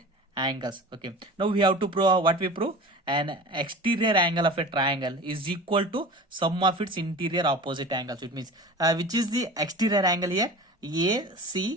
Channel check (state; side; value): normal; both; correlation 0.36